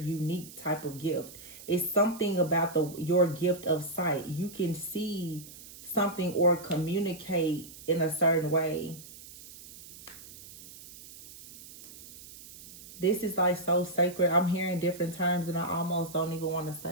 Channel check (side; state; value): right; noise; hiss, 17 dB below the sound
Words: type of gift. It's something about your gift of sight. You can see something or communicate in a certain way. This is like so sacred. I'm hearing different terms and I almost don't even want to